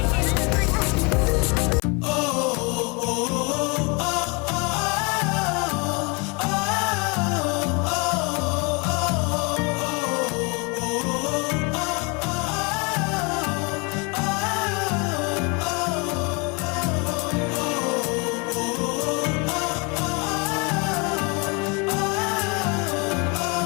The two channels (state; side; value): quieter; right; 30.7 dB